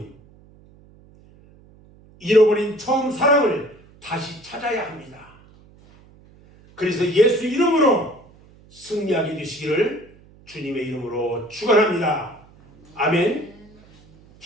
잃어버린 처음 사랑을 다시 찾아야 합니다. 그래서 예수 이름으로 승리하게 되시기를 주님의 이름으로 축원합니다. 아멘.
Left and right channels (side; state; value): right; noise; hum, 26 dB below the sound